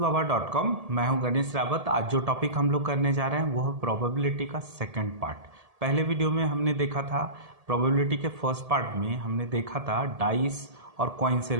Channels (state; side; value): late; left; 1.7 ms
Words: मैं हूं गणेश रावत। आज जो टॉपिक हम लोग करने जा रहे हैं वो है प्रोबेबिलिटी का सेकंड पार्ट। पहले वीडियो में हमने देखा था प्रोबेबिलिटी के फर्स्ट पार्ट में हमने देखा था डाइस और कॉइन से